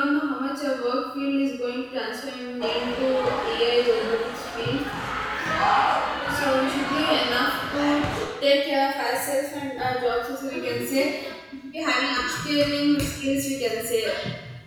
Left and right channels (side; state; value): both; identical; correlation 1.00